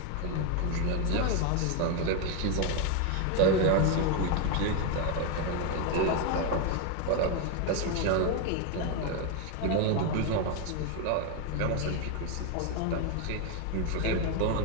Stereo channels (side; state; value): both; different; correlation 0.01